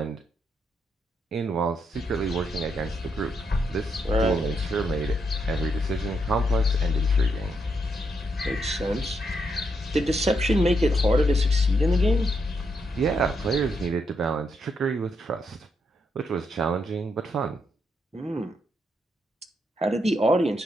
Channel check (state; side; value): normal; both; correlation 0.79